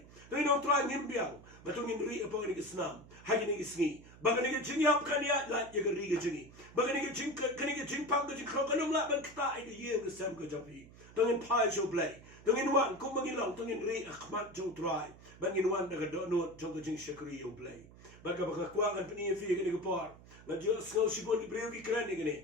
Tongin ong try ngim biang. Batongin ri apa ni ke senam. Hagi ni ke sengi. Baga ni ke jing yap kan ya la ya ke ri ke jingi. Baga ni ke jing kan ni ke jing pam ke jing kro kanum la ban kta ai ke ye ke sam ke japi. Tongin pai show play. Tongin wan kum mangilong tongin ri akhmat jong try. Bangin wan daga do no jong ke jing shakri yo play. Baga baga kwa kan peni fi ke ni ke par. Na jo snow shibon di breu ki kran ni ke ni.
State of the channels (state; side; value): noise; right; hum, 21 dB below the sound